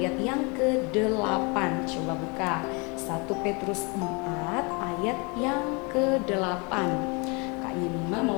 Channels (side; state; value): right; quieter; 30.3 dB